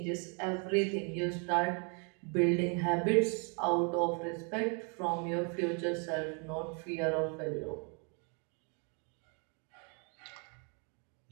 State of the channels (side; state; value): left; quieter; 36.8 dB